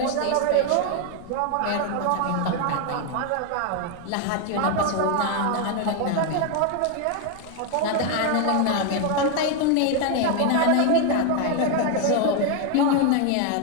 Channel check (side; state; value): both; different; correlation 0.01